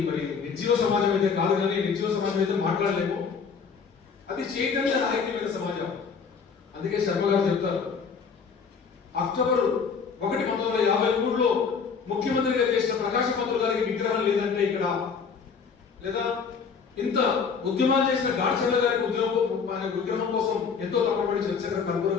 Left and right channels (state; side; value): quieter; right; 5.8 dB